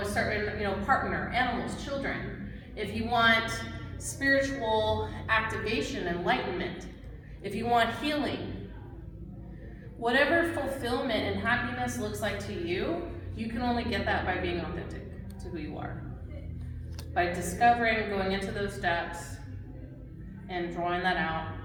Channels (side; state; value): both; identical; correlation 1.00